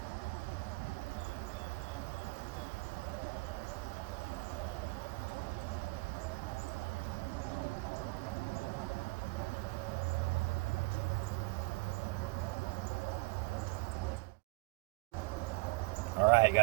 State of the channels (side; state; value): left; quieter; 26.8 dB